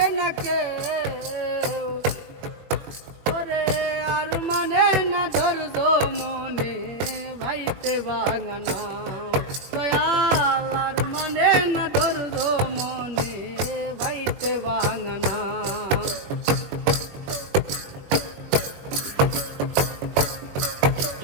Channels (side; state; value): left; late; 20 ms